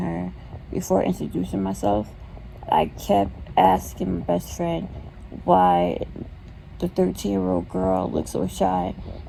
before introducing myself, I kept asking my best friend why the 13-year-old girl looks so shy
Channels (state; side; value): identical; both; correlation 1.00